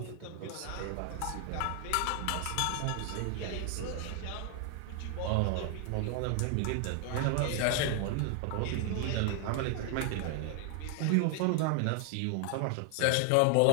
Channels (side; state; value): both; different; correlation 0.00